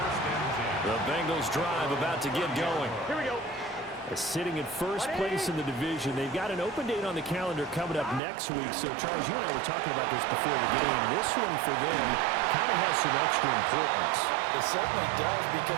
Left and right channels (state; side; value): drops out; left; at 8.2 s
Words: The Bengals drive about to get going. Here we go. Sitting in first place in the division. They've got an open date on the calendar coming up next week. So, Charles, you and I were talking about this before the game. This one for them kind of has some extra importance. It certainly does,